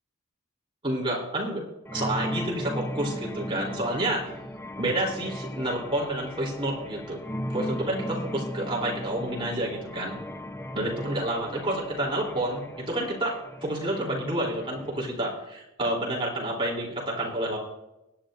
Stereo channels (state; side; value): normal; both; correlation 0.29